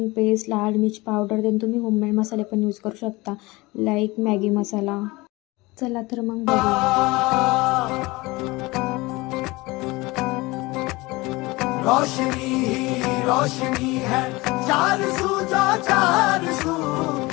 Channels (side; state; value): right; quieter; 22.2 dB